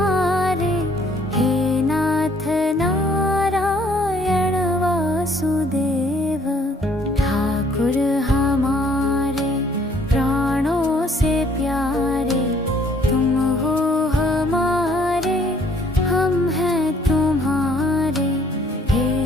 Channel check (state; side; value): normal; both; correlation 0.62